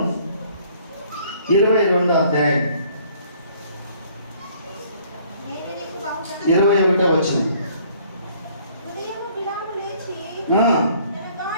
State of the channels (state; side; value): inverted; both; correlation -0.59